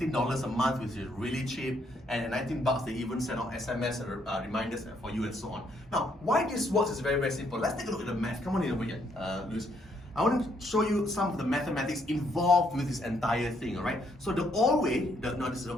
a month, which is really cheap, and at $19 they even send out SMS reminders for you and so on. Now, why this works is very, very simple. Let's take a look at the math. Come on in over here, Luis. I want to show you some of the mathematics involved with this entire thing, alright? So the old way, this is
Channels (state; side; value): normal; both; correlation 0.71